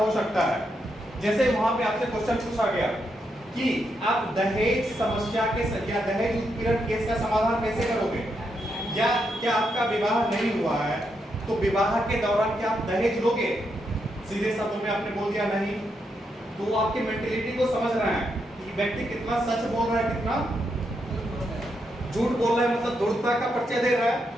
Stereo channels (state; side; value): normal; both; correlation 0.81